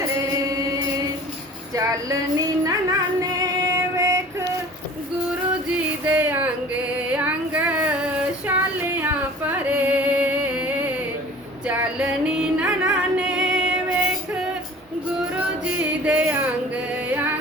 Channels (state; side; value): normal; both; correlation 0.44